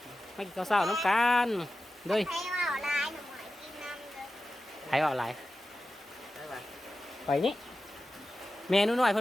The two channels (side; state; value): both; normal; correlation 0.93